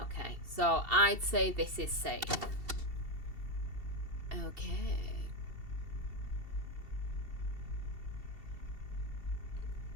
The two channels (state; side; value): late; left; 2.7 ms